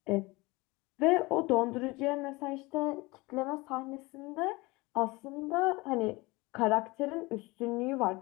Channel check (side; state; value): right; quieter; 23.2 dB